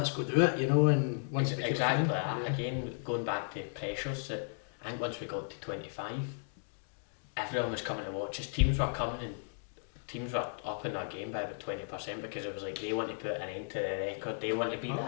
go do it, and once it became exactly that. Again, going back to pressures, that I think once we got to 25, everyone was coming to watch us. Teams were coming, and teams were upping their game by about 20%, because it was like they want to put an end to the record. They want to be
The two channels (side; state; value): right; silent; digital silence